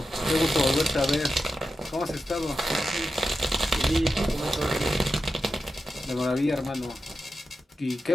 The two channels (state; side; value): normal; both; correlation 0.91